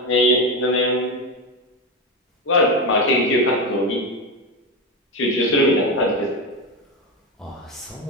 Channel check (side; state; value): both; normal; correlation 0.16